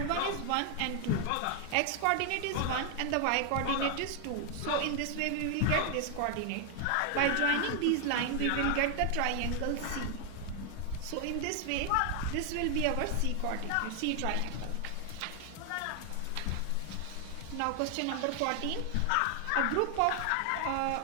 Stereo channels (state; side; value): different; both; correlation 0.00